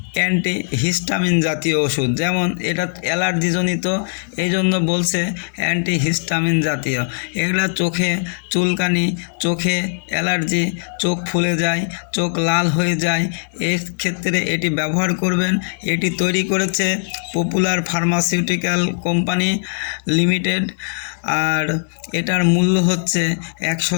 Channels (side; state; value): right; silent; 66 dB below the other